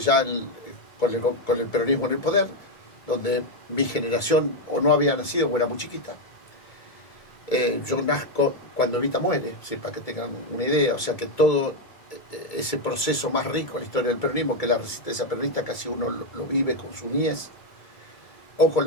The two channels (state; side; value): late; right; 2.3 ms